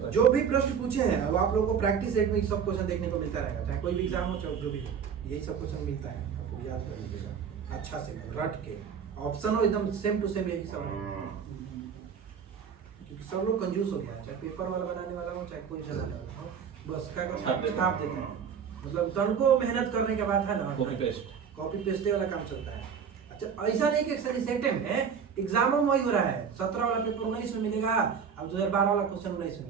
जो भी प्रश्न पूछे हैं अब आप लोगों को प्रैक्टिस सेट में सब क्वेश्चन देखने को मिलता रहेगा, चाहे कोई भी एग्जाम हो चाहे जो भी हो, यही सब क्वेश्चन मिलता है, आपको याद कर लीजिएगा। अच्छा से रट के ऑप्शन हो एकदम सेम टू सेम यही सब है, क्योंकि सब लोग कंजूस हो गया है, चाहे पेपर वाला बनाने वाला हो चाहे कोई चलाने वाला हो, बस क्या छाप देते हैं। छाप देते हैं। मतलब तनको मेहनत करने के बाद है ना, कॉपी पेस्ट। कॉपी पेस्ट वाला काम चलता है। अच्छा ऐसा नहीं कि सेट है, एग्जाम में वही हो रहा है, 17 वाला पेपर 19 में मिलेगा, अब 2012 वाला क्वेश्चन 19 में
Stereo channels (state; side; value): quieter; left; 7.0 dB